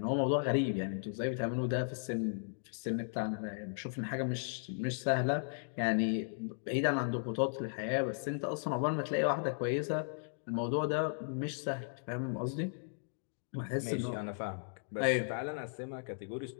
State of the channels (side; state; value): right; silent; digital silence